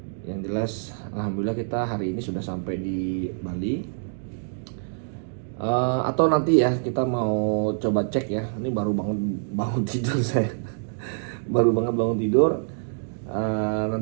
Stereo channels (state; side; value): silent; left; digital silence